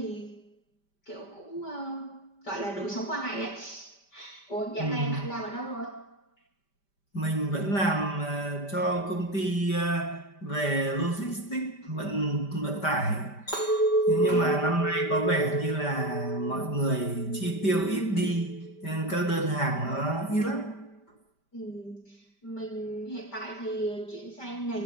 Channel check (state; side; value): late; right; 5.1 ms